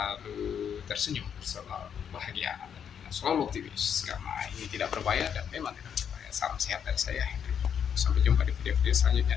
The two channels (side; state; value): right; quieter; 8.0 dB